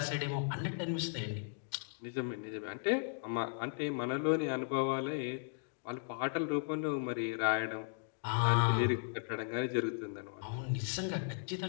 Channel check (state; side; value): silent; right; digital silence